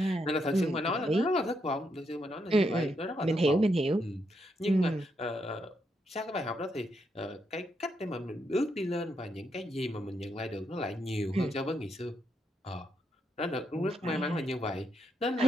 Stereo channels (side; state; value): both; normal; correlation 0.79